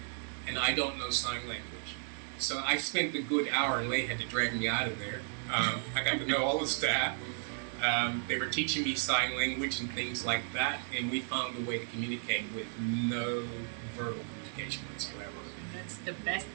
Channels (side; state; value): left; silent; 55 dB below the other